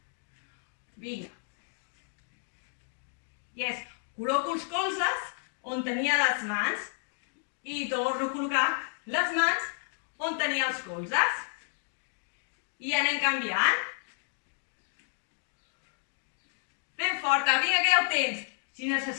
Vinga. Yes. Col·loco els colzes on tenia les mans i torno a col·locar les mans on tenia els colzes. I anem canviant. Ben forta, vinga que ja ho tens. Si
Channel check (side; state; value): right; silent; digital silence